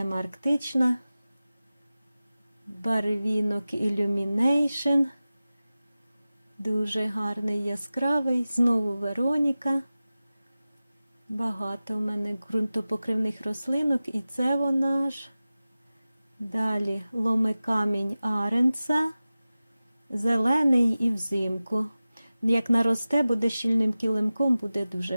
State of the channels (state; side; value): inverted; both; correlation -0.96